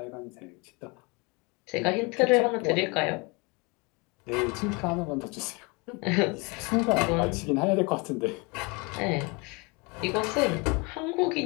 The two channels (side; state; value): right; quieter; 28.8 dB